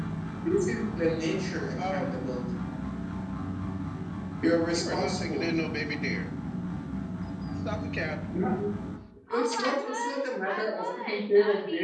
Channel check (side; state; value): both; identical; correlation 1.00